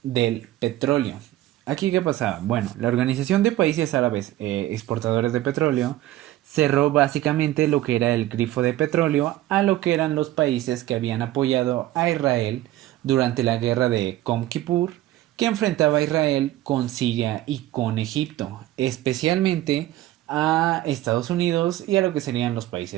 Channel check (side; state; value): left; quieter; 15.0 dB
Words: del petróleo. ¿Aquí qué pasaba? Bueno, la Organización de Países Árabes Exportadores de Petróleo cerró básicamente lo que era el grifo de petróleo a lo que eran los países que habían apoyado a Israel durante la guerra de Yom Kippur, que enfrentaba a Israel con Siria y con Egipto, especialmente a Estados Unidos y a lo que serían los